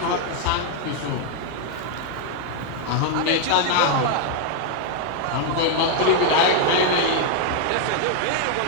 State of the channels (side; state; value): both; different; correlation 0.00